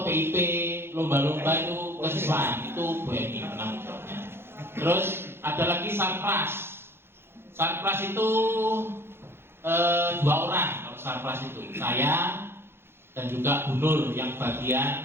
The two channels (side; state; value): left; late; 0.11 ms